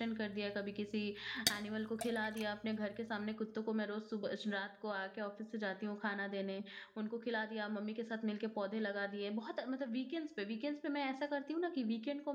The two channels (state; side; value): identical; both; correlation 1.00